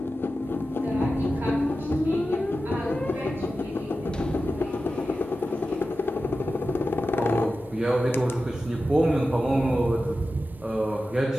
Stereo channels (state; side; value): normal; both; correlation 0.93